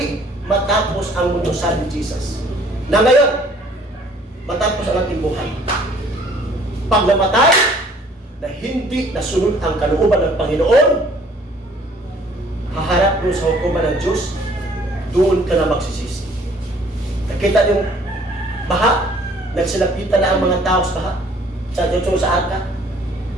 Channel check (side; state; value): both; normal; correlation 0.57